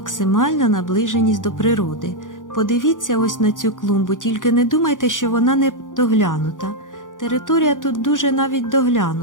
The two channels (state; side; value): late; right; 0.88 ms